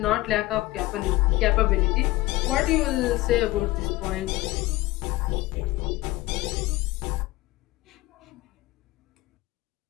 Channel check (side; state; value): right; quieter; 18.6 dB